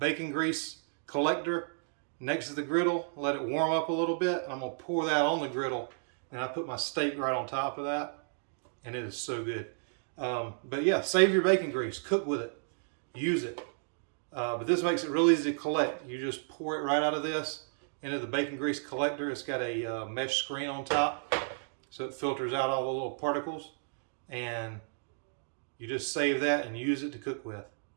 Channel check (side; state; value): left; silent; digital silence